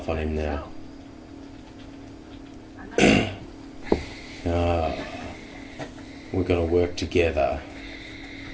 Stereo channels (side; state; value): both; identical; correlation 1.00